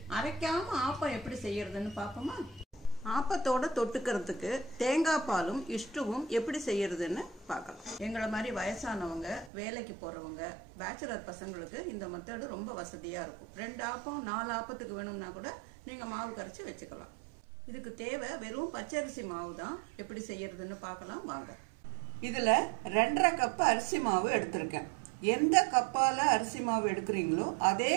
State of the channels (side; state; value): left; drops out; at 9.5 s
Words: அரைக்காம ஆப்பம் எப்படி செய்யறதுன்னு பார்ப்போமா? ஆப்பத்தோட தொட்டுக்கிறதுக்கு தேங்காய் பாலும் இஷ்டுவும் எப்படி செய்யறதுன்னு பார்க்கலாம். எங்களை மாதிரி வயசானவங்க, வேலைக்கு போறவங்க, பேச்சுலர் பசங்களுக்கு இந்த மெத்தடு ரொம்ப வசதியா இருக்கும். 2 ஆப்பம் 4 ஆப்பத்துக்கு வேணும்னா கூட நீங்க மாவு கரைச்சி வச்சுக்கலாம். இதுக்கு தேவை வெறும் பச்சரிசி மாவு தான். எப்படி செய்யறதுன்னு பார்க்கலாம் வாங்க. இதுல 2.5 கப் அரிசி மாவு எடுத்திருக்கேன். எந்த கப்பால அரிசி மாவு எடுக்கிறீங்களோ அதே